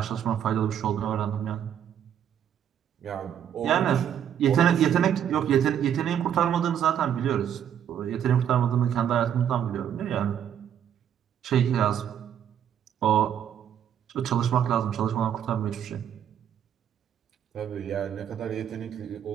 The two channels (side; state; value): left; quieter; 9.4 dB